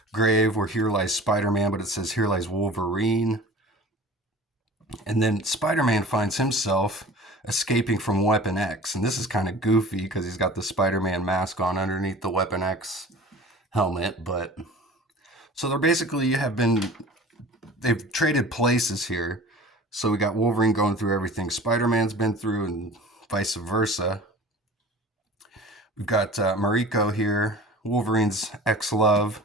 grave, where here lies Spider-Man, but it says here lies Wolverine. And then Spider-Man finds himself escaping from Weapon X. And this is kind of goofy because he's got the Spider-Man mask on underneath the Weapon X helmet. But so they've traded places here. So we got Wolverine going through everything Spider-Man's been through and vice versa. We've got Mariko here, Wolverine's ex-love,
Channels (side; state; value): both; normal; correlation 0.42